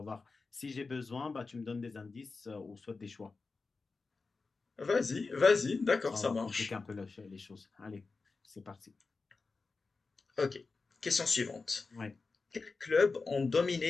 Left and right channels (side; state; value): right; quieter; 4.1 dB